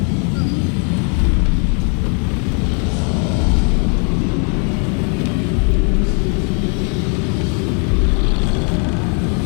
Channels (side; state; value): right; quieter; 39.7 dB